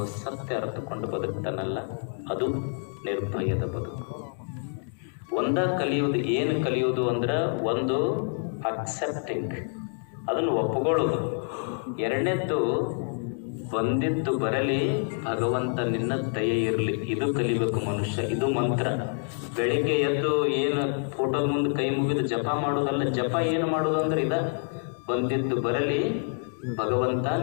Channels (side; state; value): right; silent; 60 dB below the other